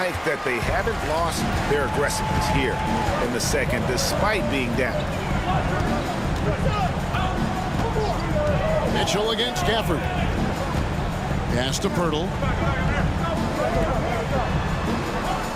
that they haven't lost their aggressiveness here in the second, despite being down. Mitchell against Gafford. Pass to Pirtle.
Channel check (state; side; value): identical; both; correlation 1.00